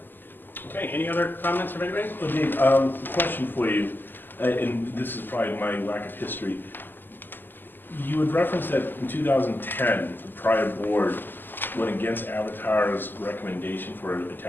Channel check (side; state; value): right; late; 0.091 ms